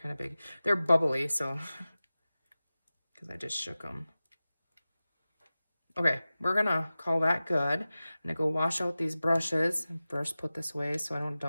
of big. They're bubbly, so because I just shook them. Okay, we're gonna call that good. I'm gonna go wash out these brushes and first put this away so I don't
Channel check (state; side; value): inverted; both; correlation -0.96